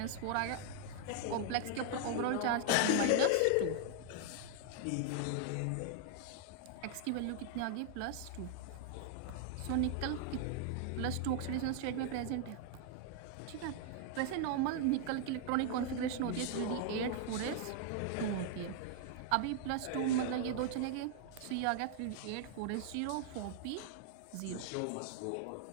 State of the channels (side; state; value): both; different; correlation 0.00